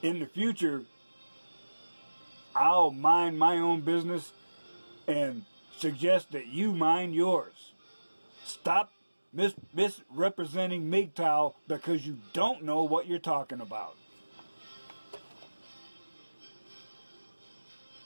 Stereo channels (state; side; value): inverted; both; correlation -1.00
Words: In the future, I'll mind my own business and suggest that you mind yours. Stop misrepresenting MGTOW because you don't know what you're talking about.